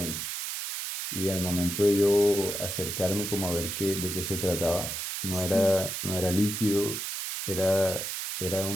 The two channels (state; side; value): noise; right; hiss, 4 dB below the sound